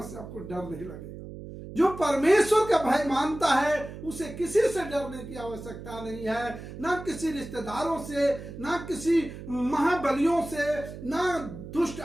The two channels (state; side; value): noise; right; hum, 12 dB below the sound